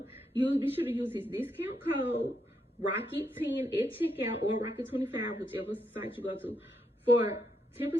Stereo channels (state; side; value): normal; both; correlation 0.79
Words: You be sure to use his discount code Rocket10 at checkout, or Rocket25, whichever site you go to, for